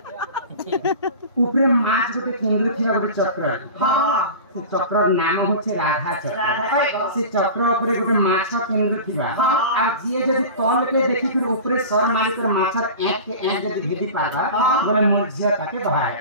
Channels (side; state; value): both; inverted; correlation -0.34